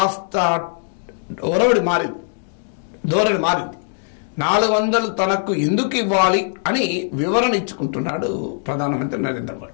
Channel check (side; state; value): right; silent; digital silence